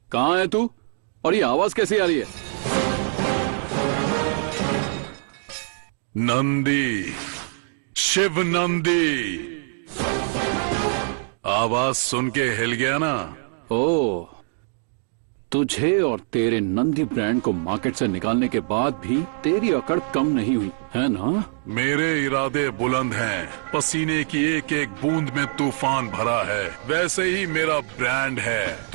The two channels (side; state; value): left; silent; digital silence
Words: कहाँ है तू? और ये आवाज कैसी आ रही है? नंदी, शिव नंदी। आवाज सुन के हिल गया ना? ओ, तुझे और तेरे नंदी ब्रांड को मार्केट से निकालने के बाद भी तेरी अकड़ कम नहीं हुई है ना? मेरे इरादे बुलंद हैं। पसीने की एक एक बूंद में तूफान भरा है। वैसे ही मेरा ब्रांड है।